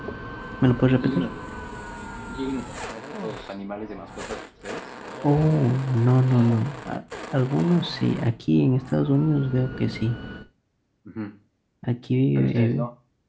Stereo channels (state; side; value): identical; both; correlation 1.00